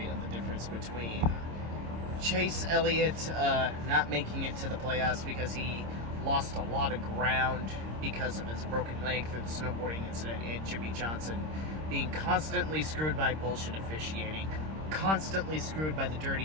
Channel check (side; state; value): left; late; 26 ms